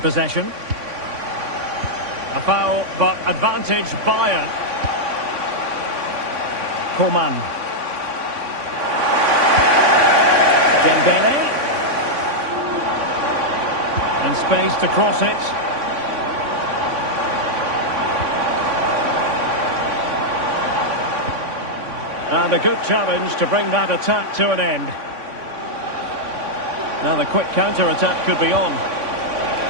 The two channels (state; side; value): late; left; 3.5 ms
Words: A foul, but advantage Bayern. Coman. Dembele. And space to cross it. And a good challenge to bring that attack to an end. Now the quick counter-attack could be on.